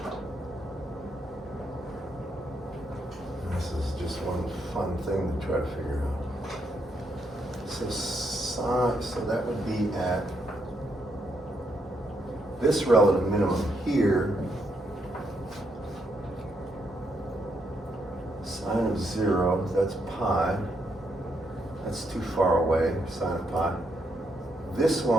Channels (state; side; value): normal; both; correlation 0.78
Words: This is just one fun thing to try to figure out. So that would be at this relative minimum here, sine of 0, that's pi. That's too far away, sine of pi. This